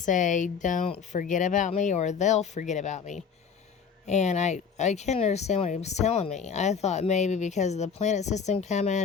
"Don't forget about me, or they'll forget about me." And I couldn't understand what he was telling me. I thought maybe because of the planet system coming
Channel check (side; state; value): right; quieter; 6.3 dB